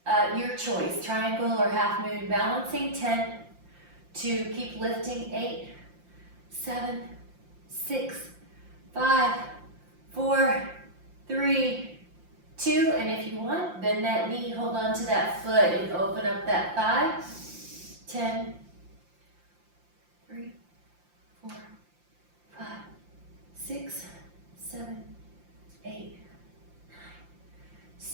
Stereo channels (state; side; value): late; left; 5.7 ms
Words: your choice, triangle or half moon balancing. 10, 2, keep lifting. 8, 7, 6, 5, 4, 3, 2, and if you want, bend that knee, hold on to that foot and open up that thigh. 10, 3, 4, 5, 6, 7, 8, 9.